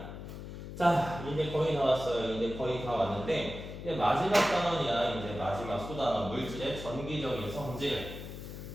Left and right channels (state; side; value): noise; left; hum, 10 dB below the sound